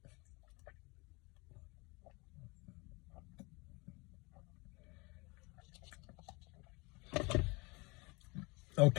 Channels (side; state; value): right; quieter; 26.8 dB